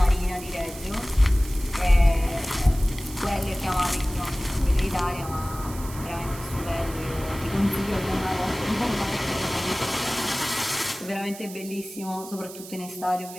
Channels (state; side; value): noise; right; hiss, 15 dB below the sound